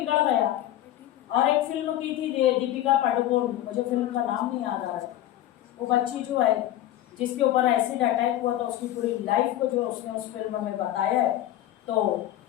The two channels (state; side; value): quieter; right; 13.2 dB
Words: गया, और एक फिल्म की थी दीपिका पादुकोण, मुझे फिल्म का नाम नहीं याद आ रहा है, वो बच्ची जो है जिसके ऊपर एसिड अटैक हुआ, तो उसकी पूरी लाइफ को जो उसने उस फिल्म में बताया है। तो